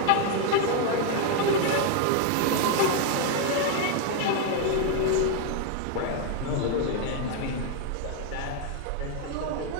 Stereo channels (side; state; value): both; different; correlation 0.01